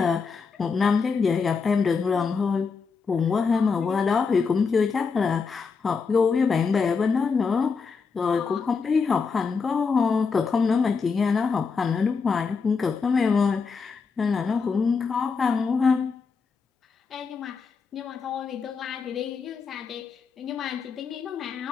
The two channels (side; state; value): right; quieter; 5.2 dB